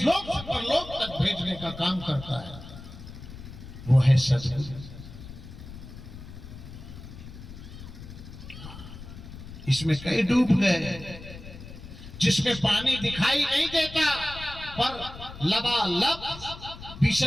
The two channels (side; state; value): left; noise; rumble, 14 dB below the sound